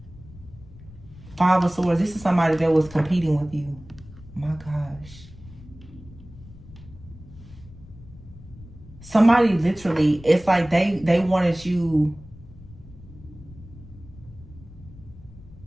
Five of Swords. This is somebody that was competing with you. My gosh. Somebody literally, it's like they wanted you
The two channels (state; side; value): noise; left; rumble, 19 dB below the sound